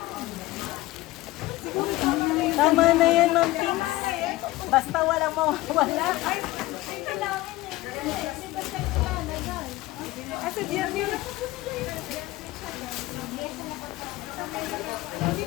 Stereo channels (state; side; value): quieter; right; 18.3 dB